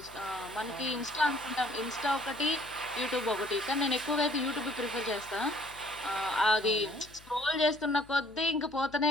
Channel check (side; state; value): left; noise; hum, 24 dB below the sound